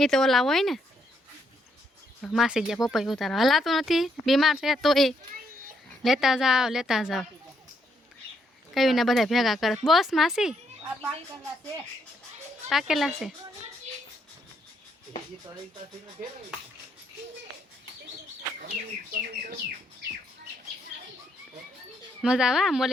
તો ઓલા હોય ને માસી ગયા પપૈયું ઉતારો હલાતું નથી બીમાર છે તો એ લેતા જાઓ કયું ને બધા ભેગા કરે બસ માસી પાકેલા છે મજા આવે આમ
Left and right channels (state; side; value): normal; both; correlation 0.75